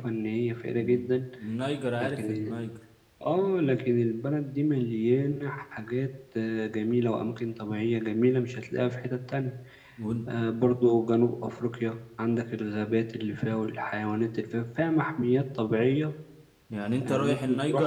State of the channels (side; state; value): both; identical; correlation 1.00